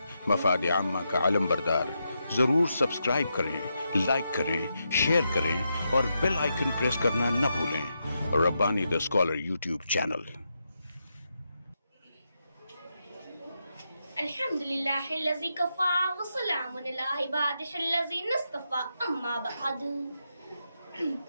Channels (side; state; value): both; inverted; correlation -0.84